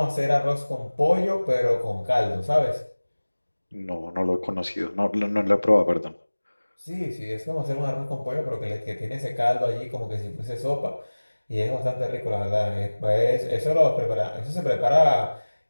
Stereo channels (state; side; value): inverted; both; correlation -1.00